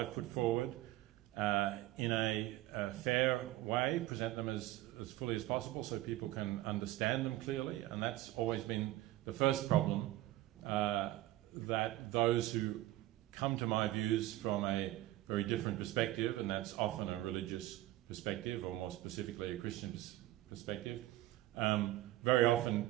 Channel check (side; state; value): left; quieter; 16.2 dB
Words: put forward in a fair way, present them as fully as possible so people can understand them clearly, and that's always been the first problem, that those who come to my views from a very different perspective, and that's often a religious perspective, or more specifically a Christian perspective, very often